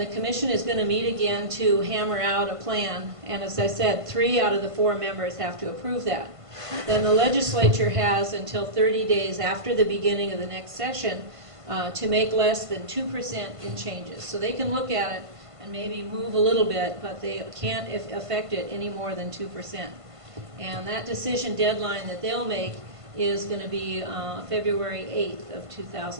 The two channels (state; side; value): late; left; 1.5 ms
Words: commission is going to meet again to hammer out a plan. And as I said, 3 out of the 4 members have to approve that. Then the legislature has until 30 days after the beginning of the next session to make less than 2% in changes. So they can look at it and maybe move a little bit, but they can't affect it any more than 2%. And that decision deadline that they'll make is going to be February 8th of